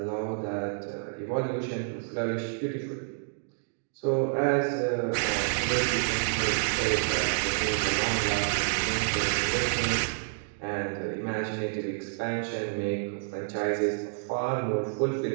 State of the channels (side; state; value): left; silent; digital silence